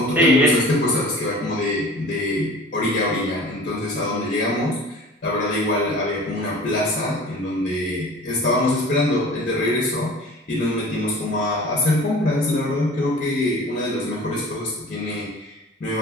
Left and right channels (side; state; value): both; normal; correlation 0.43